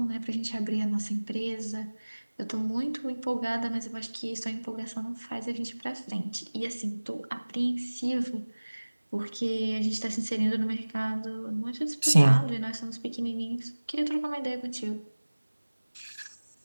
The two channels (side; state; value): both; inverted; correlation -1.00